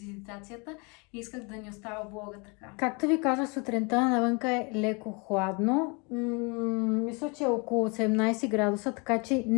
изитацията и исках да ни остава блога така. Както ви казах, сутринта навънка е леко хладно. Мисля, че е около 17 градуса, така че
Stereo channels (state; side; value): quieter; right; 30.9 dB